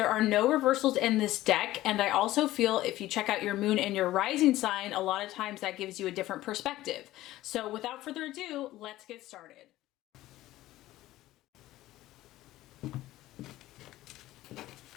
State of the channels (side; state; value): right; quieter; 15.9 dB